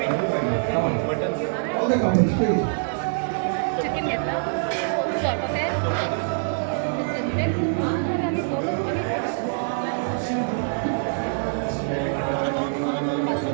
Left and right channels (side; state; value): left; silent; digital silence